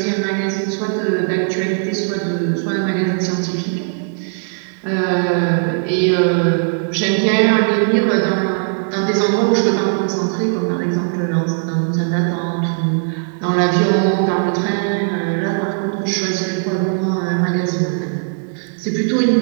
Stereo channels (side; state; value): left; silent; digital silence